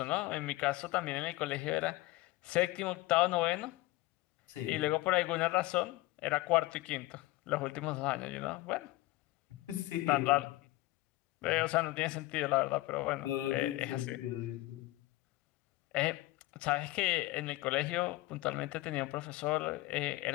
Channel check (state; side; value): quieter; right; 18.9 dB